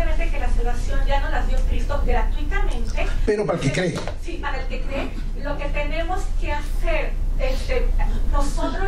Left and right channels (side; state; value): both; identical; correlation 1.00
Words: de que la salvación ya nos las dio Cristo gratuitamente, pero para el que cree, sí, para el que cree, lo que tenemos que hacer